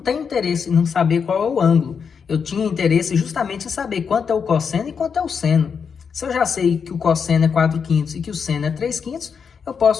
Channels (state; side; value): quieter; right; 6.3 dB